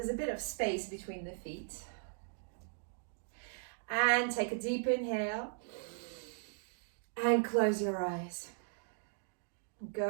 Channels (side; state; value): left; silent; digital silence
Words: a bit of space between the feet. And take a deep inhale. And close your eyes.